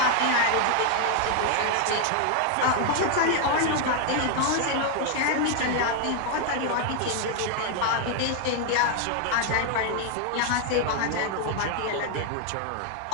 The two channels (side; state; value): both; different; correlation 0.00